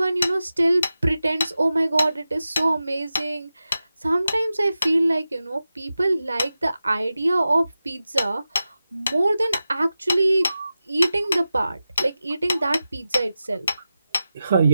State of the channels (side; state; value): both; inverted; correlation -0.93